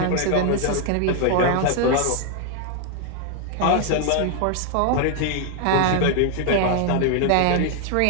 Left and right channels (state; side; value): different; both; correlation 0.00